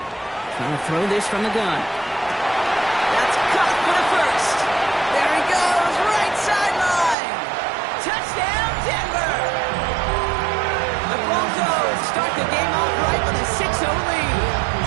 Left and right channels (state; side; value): drops out; left; at 7.2 s